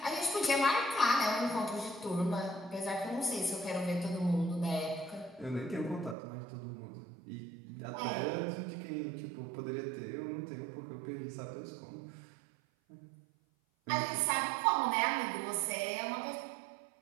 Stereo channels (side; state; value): left; drops out; at 6.2 s